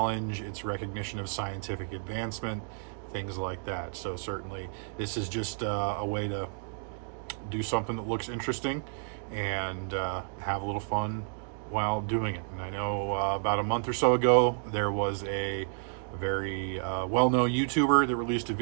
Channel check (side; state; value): left; silent; digital silence